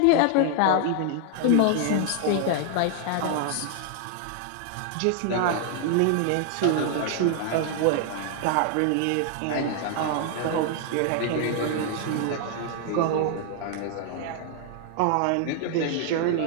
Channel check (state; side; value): different; both; correlation 0.00